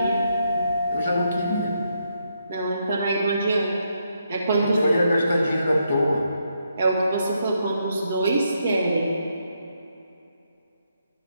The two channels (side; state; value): both; inverted; correlation -0.78